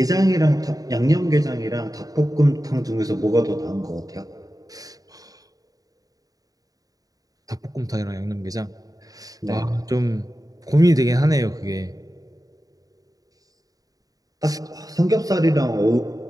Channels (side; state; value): left; late; 0.18 ms